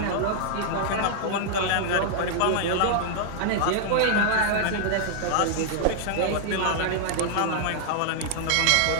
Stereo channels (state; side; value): different; both; correlation -0.01